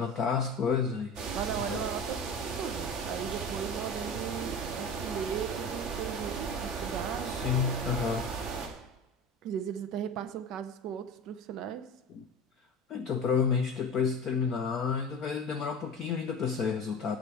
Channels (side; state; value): both; normal; correlation 0.32